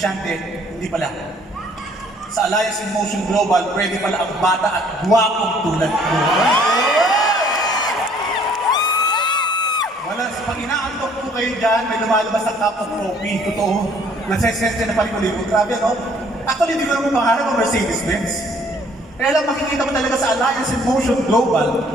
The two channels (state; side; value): normal; both; correlation 0.59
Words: hindi pala. Sa Alliance in Motion Global, pwede pala ang bata at guwapong tulad ko. Wala, pag inaantok po kayo dyan, may lumalabas na cup of coffee. Totoo. Nagsesensya na palikulibo. Grabe, no? Actually, hindi ko naman pangarap ang Mercedes-Benz. Kaya lang makikita mo talaga sa Alliance in Motion Global,